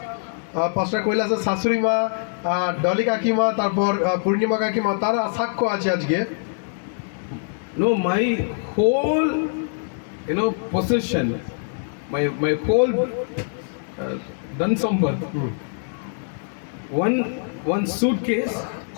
পাস্টার কৈলাসের শাশুড়ি মা, ডলি কাকিমা, তারপর পূর্ণিমা কাকিমা, তারা সাক্ষ্য আছে আজকে। No, my whole, possession, my whole Dansamba, one suitcase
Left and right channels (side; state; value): right; silent; digital silence